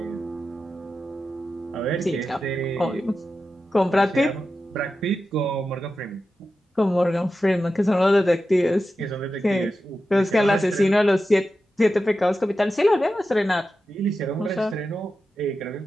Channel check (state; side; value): normal; both; correlation 0.91